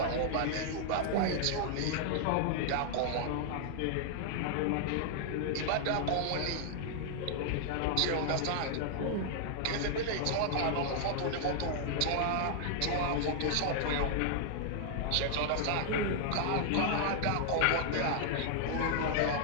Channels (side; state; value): both; different; correlation -0.01